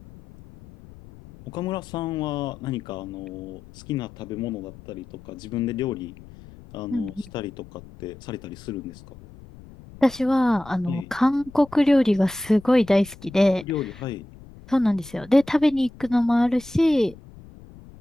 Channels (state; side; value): noise; left; rumble, 20 dB below the sound